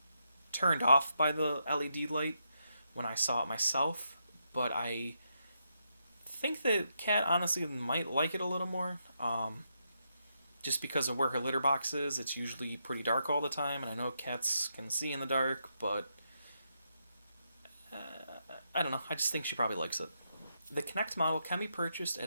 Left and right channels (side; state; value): both; inverted; correlation -0.81